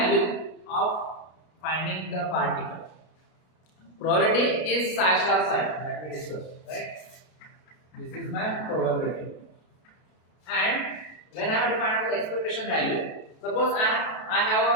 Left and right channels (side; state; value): right; late; 32 ms